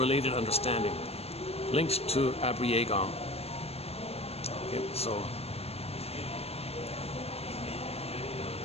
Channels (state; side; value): late; right; 0.29 ms